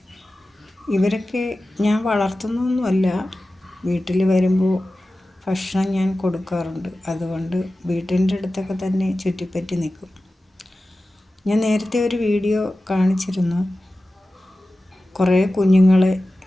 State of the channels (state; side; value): normal; both; correlation 0.95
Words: ഇവരൊക്കെ ഞാൻ വളർത്തുന്നൊന്നുമല്ല, വീട്ടിൽ വരുമ്പോൾ ഭക്ഷണം ഞാൻ കൊടുക്കാറുണ്ട്. അതുകൊണ്ട് വീട്ടിൻ്റെ അടുത്തൊക്കെ തന്നെ ചുറ്റിപ്പറ്റി നിൽക്കും. ഞാൻ നേരത്തെ ഒരു വീഡിയോ കാണിച്ചിരുന്നു. കുറേ കുഞ്ഞുങ്ങളെ